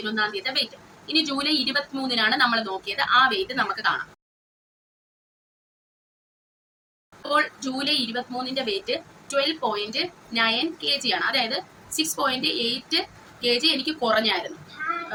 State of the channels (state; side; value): identical; both; correlation 1.00